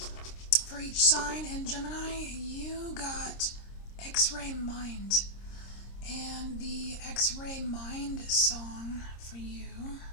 for each sign, and Gemini, you got X-Ray Mind. And the X-Ray Mind song for you,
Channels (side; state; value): right; late; 26 ms